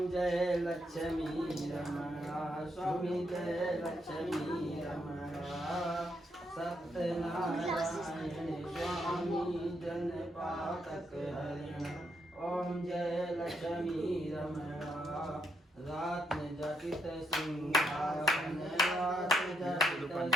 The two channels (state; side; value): normal; both; correlation 0.78